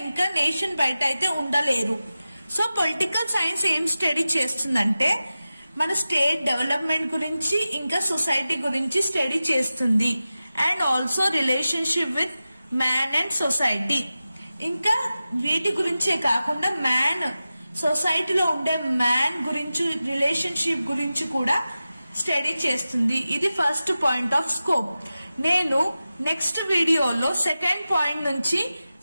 nation బయట అయితే ఉండలేరు. So political science ఏం study చేస్తుందంటే మన స్టేట్ డెవలప్మెంట్ గురించి ఇంకా సొసైటీ గురించి స్టడీ చేస్తుంది, and also relationship with man and society. ఇంకా వీటి గురించే కాకుండా మ్యాన్ సొసైటీలో ఉండే మ్యాన్ గురించి రిలేషన్షిప్ గురించి కూడా స్టడీ చేస్తుంది. ఇది ఫస్ట్ పాయింట్ ఆఫ్ స్కోప్. నేను నెక్స్ట్ వీడియోలో సెకండ్ పాయింట్ నుంచి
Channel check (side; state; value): both; inverted; correlation -0.94